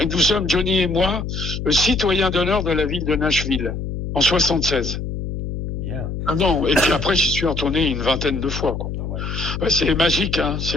nous sommes, Johnny et moi, citoyens d'honneur de la ville de Nashville, en 76. Bien. Ah non, et puis après, j'y suis retourné une vingtaine de fois, quoi. Ah ouais. Ouais, c'est magique, hein,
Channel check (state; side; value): noise; left; hum, 5 dB below the sound